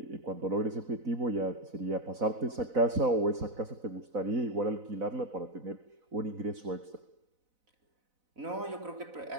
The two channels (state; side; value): late; left; 4.0 ms